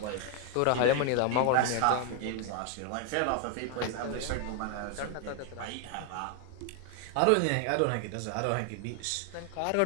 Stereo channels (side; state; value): both; different; correlation 0.00